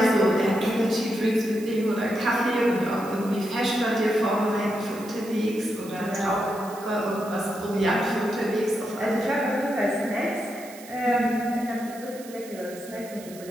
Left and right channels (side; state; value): right; noise; hiss, 18 dB below the sound